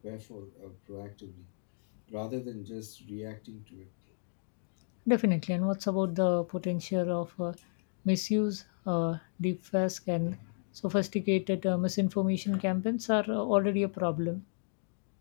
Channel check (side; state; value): right; silent; digital silence